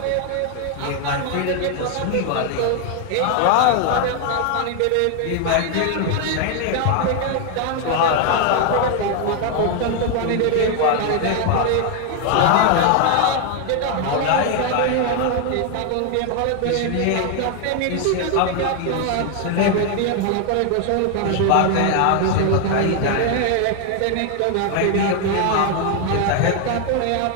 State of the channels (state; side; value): different; both; correlation 0.00